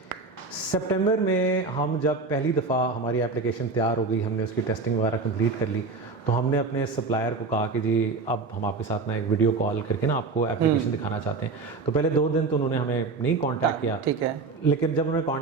सितंबर में हम जब पहली दफ़ा हमारी एप्लीकेशन तैयार हो गई, हमने उसकी टेस्टिंग वगैरह कंप्लीट कर ली, तो हमने अपने सप्लायर को कहा कि जी अब हम आपके साथ ना एक वीडियो कॉल करके ना आपको एप्लीकेशन दिखाना चाहते हैं। तो पहले 2 दिन तो उन्होंने हमें नहीं कांटेक्ट किया, ठीक है। लेकिन जब उन्होंने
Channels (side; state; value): left; quieter; 4.0 dB